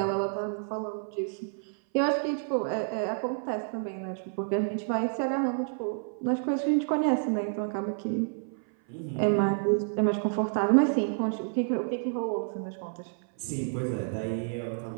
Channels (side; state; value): left; silent; 56 dB below the other